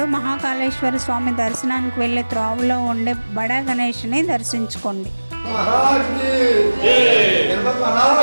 మహాకాళేశ్వర స్వామి దర్శనానికి వెళ్ళే త్రోవలో ఉండే బడా గణేష్ని దర్శించుకోండి.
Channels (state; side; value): inverted; both; correlation -1.00